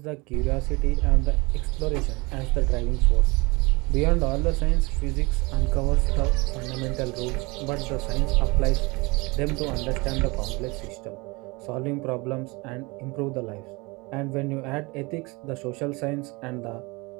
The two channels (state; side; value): quieter; left; 25.6 dB